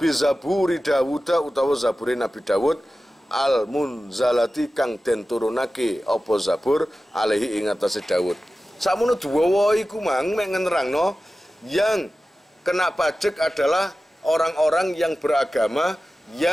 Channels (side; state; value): both; normal; correlation 0.95